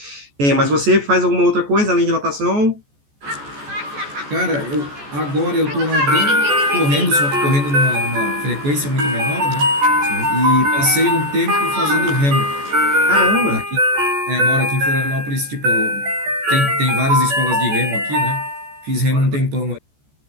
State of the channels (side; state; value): left; late; 14 ms